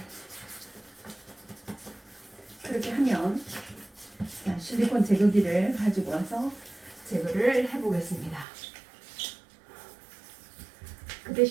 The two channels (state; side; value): drops out; left; at 8.5 s